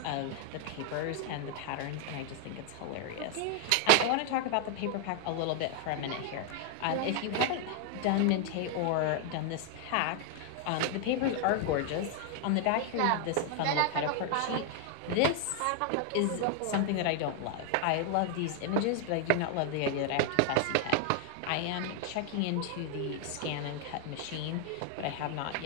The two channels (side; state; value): both; different; correlation 0.00